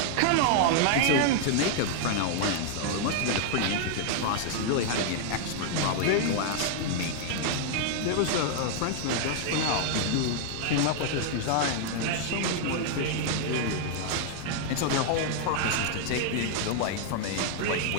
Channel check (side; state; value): both; different; correlation 0.00